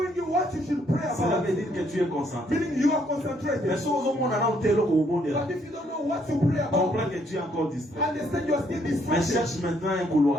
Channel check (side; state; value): both; normal; correlation 0.69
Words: you what you should pray Cela about. veut dire que tu es concentré. Meaning you are Mais concentrated. si ozomona na ote eloko obondela, But if you don't know what to pray about, comprends que tu es encore distrait. understand you are still Mais distracted. cherche maintenant un